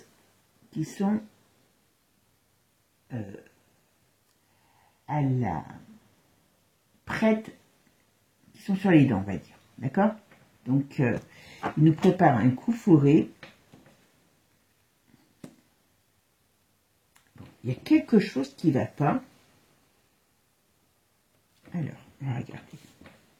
qui sont prêtes, qui sont sur les dents, on va dire. D'accord? Donc, il nous prépare un coup fourré. Bon, il y a quelque chose qui ne va pas. Alors, on va regarder.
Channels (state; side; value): identical; both; correlation 1.00